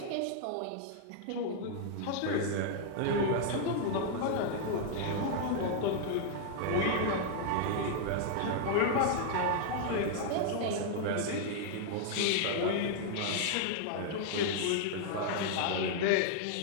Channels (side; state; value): both; different; correlation 0.00